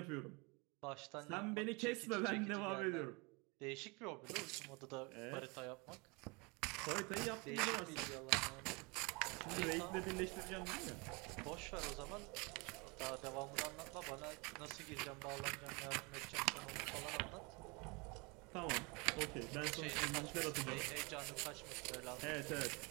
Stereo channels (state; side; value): quieter; left; 28.7 dB